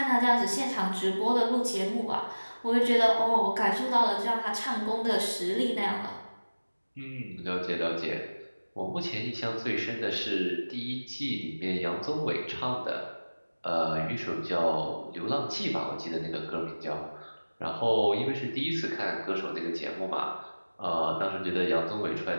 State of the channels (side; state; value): both; inverted; correlation -1.00